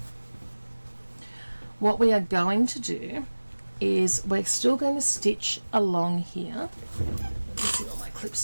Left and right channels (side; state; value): both; inverted; correlation -1.00